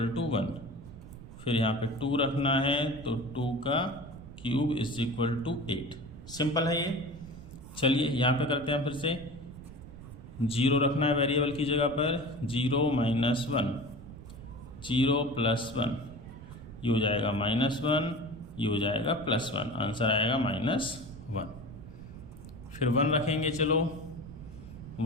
टू 1। फिर यहाँ पे 2 रखना है, तो 2 का cube is equal to 8। Simple है ये। चलिए यहाँ पे करते हैं फिर से। 0 रखना है वेरिएबल की जगह पर, 0 माइनस 1, 0 प्लस 1, ये हो जाएगा -1, ये हो जाएगा +1, आंसर आएगा -1। फिर 1 रखेंगे, चलो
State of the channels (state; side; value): noise; right; rumble, 15 dB below the sound